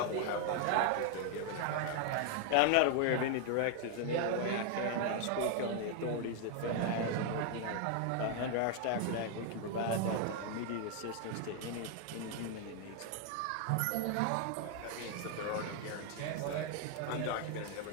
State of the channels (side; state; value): both; different; correlation 0.00